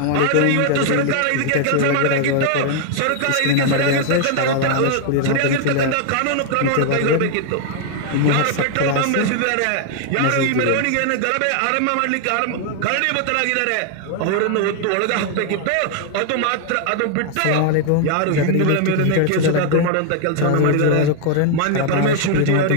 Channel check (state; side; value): different; both; correlation 0.00